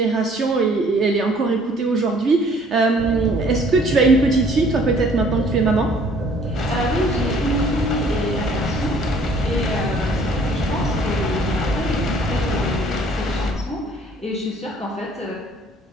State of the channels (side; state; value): both; normal; correlation 0.57